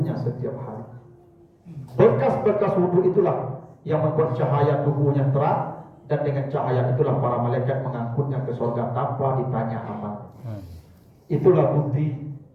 setiap hari. Bekas-bekas wudu itulah yang membuat cahaya tubuhnya terang, dan dengan cahaya itulah para malaikat mengangkutnya ke surga tanpa ditanya amal. Itulah bukti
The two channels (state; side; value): identical; both; correlation 1.00